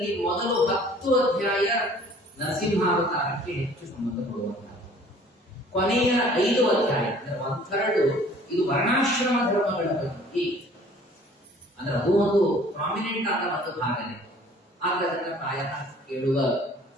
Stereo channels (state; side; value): normal; both; correlation 0.52